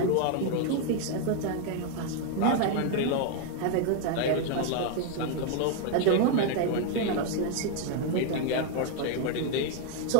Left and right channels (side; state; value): both; different; correlation 0.00